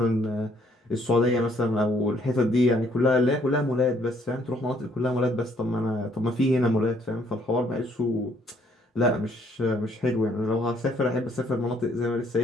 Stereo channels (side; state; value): both; normal; correlation 0.65